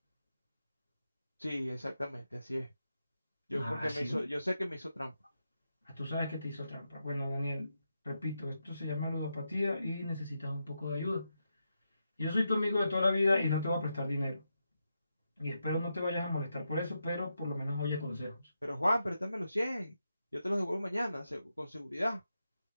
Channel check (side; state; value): both; inverted; correlation -0.86